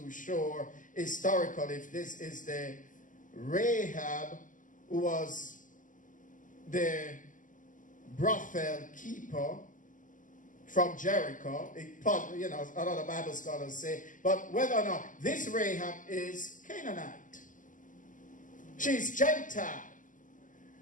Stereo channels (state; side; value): late; right; 0.38 ms